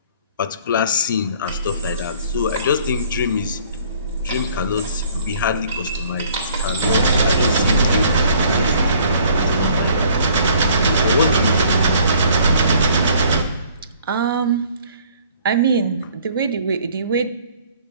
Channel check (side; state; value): both; inverted; correlation -0.57